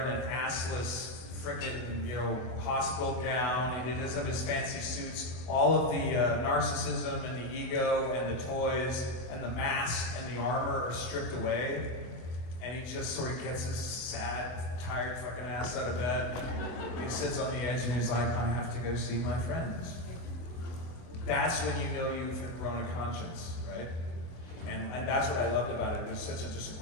an assless frickin', you know, hospital gown, he does have his fancy suits, all of the narcissism and the ego and the toys and the mask and the armor are stripped away, and he just sort of gets his sad, tired fucking ass out of bed. He sits on the edge and he's like, I have to go see my friends. That's when you know you've grown a conscience, right? And that's what I loved about it. It was such a just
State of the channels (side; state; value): right; late; 24 ms